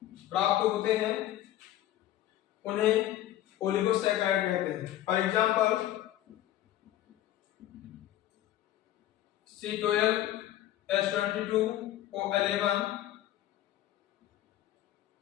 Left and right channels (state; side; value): quieter; right; 13.4 dB